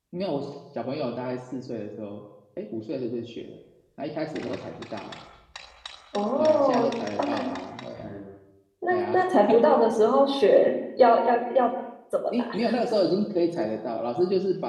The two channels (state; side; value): identical; both; correlation 1.00